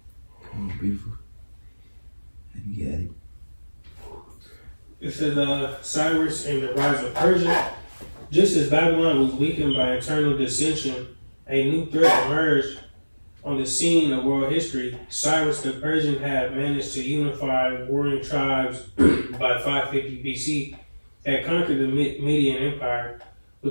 Beautiful. You got it. It says Cyrus and the rise of Persia. Just as Babylon was weakened by internal dissension, a new threat emerged on the scene of world history. Cyrus the Persian had managed to unify warring tribes by 550 BC, had conquered the Median Empire.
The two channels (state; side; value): inverted; both; correlation -1.00